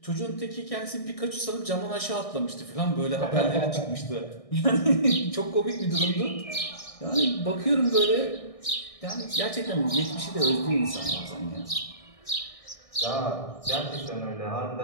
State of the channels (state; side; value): late; right; 1.6 ms